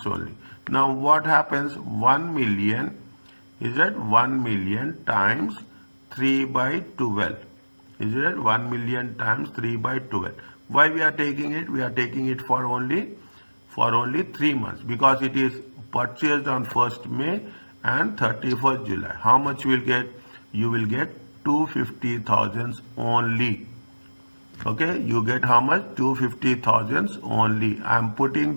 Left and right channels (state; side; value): inverted; both; correlation -1.00